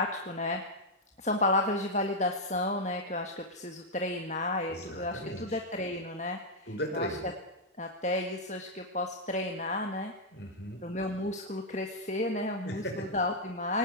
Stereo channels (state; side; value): normal; both; correlation -0.02